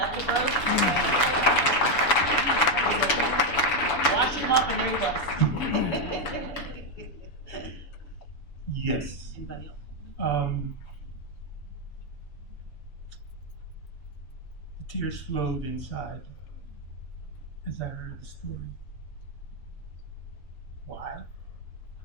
Wash him off and ring us. Yes. Anybody else? The tears flowed inside as I heard the story. Why?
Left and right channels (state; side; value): late; right; 7.0 ms